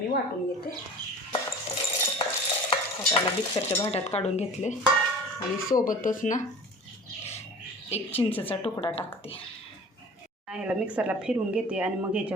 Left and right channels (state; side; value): normal; both; correlation 0.40